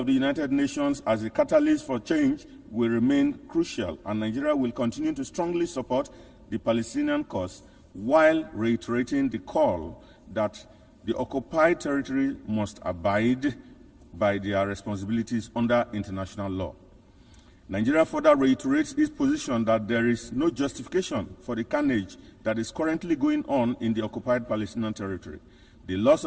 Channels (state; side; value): identical; both; correlation 1.00